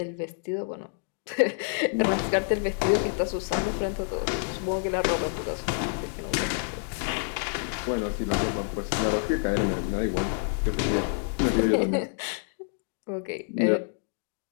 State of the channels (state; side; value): silent; right; digital silence